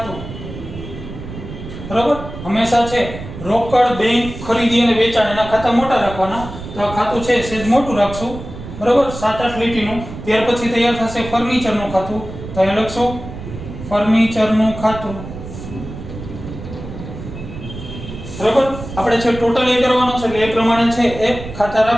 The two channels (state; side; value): noise; right; rumble, 11 dB below the sound